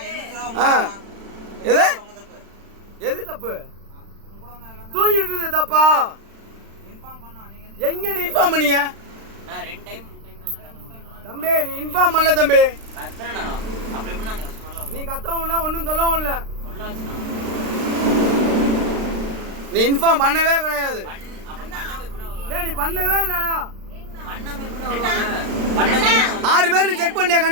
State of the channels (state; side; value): late; left; 36 ms